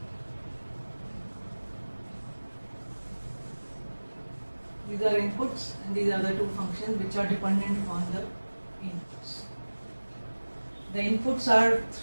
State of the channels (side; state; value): both; inverted; correlation -1.00